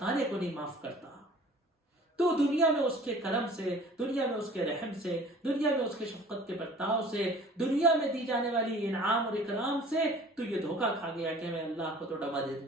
کو نہیں معاف کرتا. تو دنیا میں اس کے کرم سے، دنیا میں اس کے رحم سے، دنیا میں اس کے شفقت کے برتاؤ سے، دنیا میں دی جانے والی انعام اور اکرام سے تو یہ دھوکا کھا گیا کہ میں اللہ کو تو ڈبا دے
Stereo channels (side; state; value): both; normal; correlation 0.48